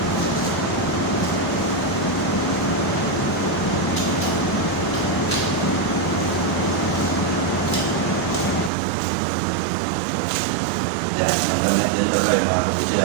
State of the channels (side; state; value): left; drops out; at 8.7 s